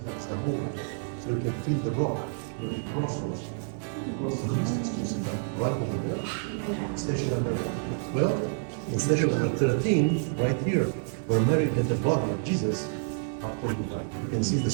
that's the hole. So you can feel the rock where the cross was. The cross of Jesus is right over there. Station number 12 and station number 13, right here, where Mary had the body of Jesus after he died. You can see the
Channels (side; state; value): left; silent; digital silence